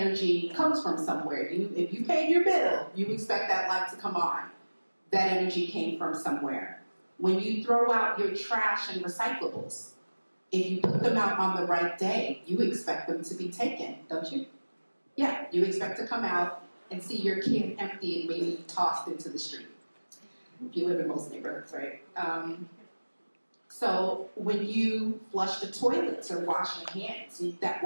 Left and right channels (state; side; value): inverted; both; correlation -1.00